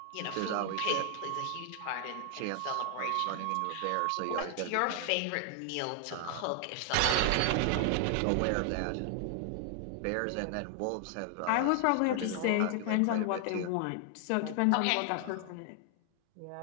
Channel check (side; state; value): both; different; correlation 0.00